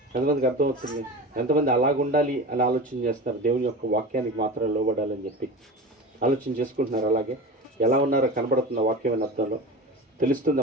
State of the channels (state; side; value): normal; both; correlation 0.30